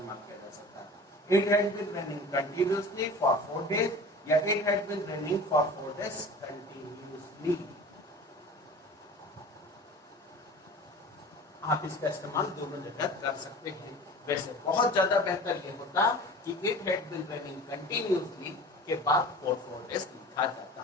किया जा सकता है। It had been raining continuously for 4 days या it had been raining for 4 days continuously. आप इसका इस्तेमाल दोनों जगह कर सकते हैं। वैसे बहुत ज्यादा बेहतर ये होता कि it had been raining continuously के बाद 4 डेज लिखा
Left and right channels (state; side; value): normal; both; correlation 0.39